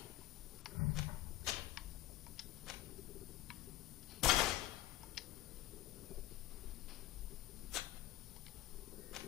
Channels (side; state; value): right; quieter; 14.9 dB